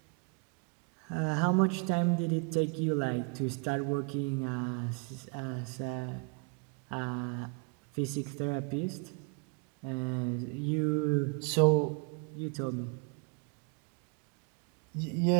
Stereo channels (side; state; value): left; quieter; 34.8 dB